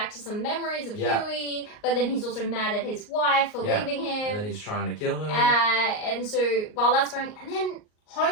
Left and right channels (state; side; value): late; right; 38 ms